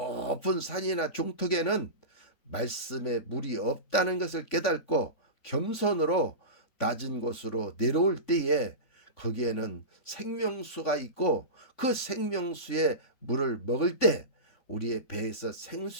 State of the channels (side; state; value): right; late; 3.5 ms